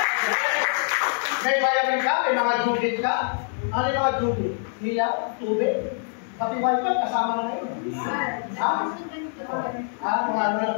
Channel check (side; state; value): right; silent; 62 dB below the other